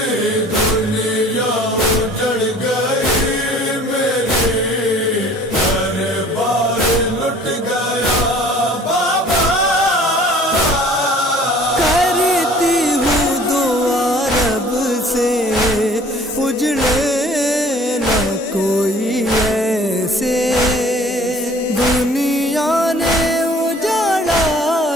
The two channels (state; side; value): normal; both; correlation 0.51